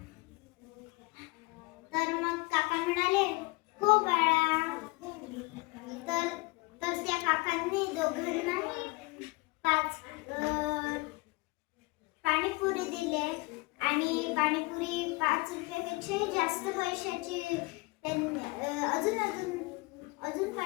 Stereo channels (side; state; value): right; quieter; 25.8 dB